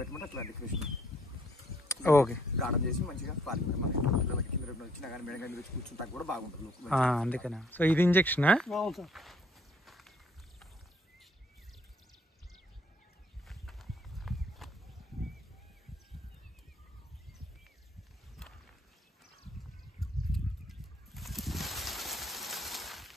పెట్టమంటే అట్లా డెకరేషన్ ఓకే గార్డెన్ చేసి మంచిగా ఫార్మింగ్ మనకి పిల్లలకి కింద వచ్చినా కానీ మేడ కానీ వచ్చి కూర్చుంటా కూడా బాగుంటుంది. అందుకనే. సో ఇది ఇంజెక్షనా? అవును సార్.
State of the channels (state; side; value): normal; both; correlation 0.64